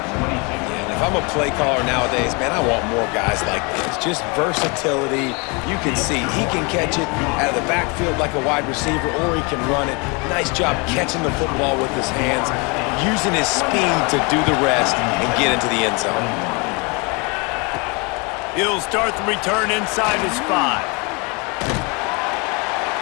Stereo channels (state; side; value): quieter; right; 30.4 dB